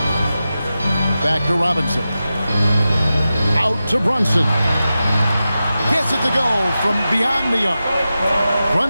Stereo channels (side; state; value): both; inverted; correlation -0.92